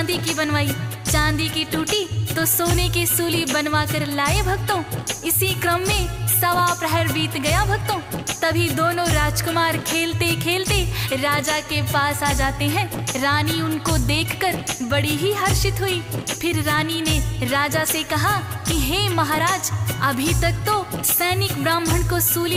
की बनवाई, चांदी की टूटी तो सोने की सूली बनवा कर लाए। भक्तों, इसी क्रम में 1.25 प्रहर बीत गया। भक्तों, तभी दोनों राजकुमार खेलते खेलते राजा के पास आ जाते हैं। रानी उनको देखकर बड़ी ही हर्षित हुई। फिर रानी ने राजा से कहा कि हे महाराज, अभी तक तो सैनिक ब्राह्मण को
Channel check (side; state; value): both; identical; correlation 1.00